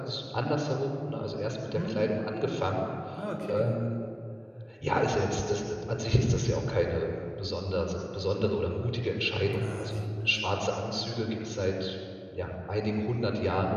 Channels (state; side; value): identical; both; correlation 1.00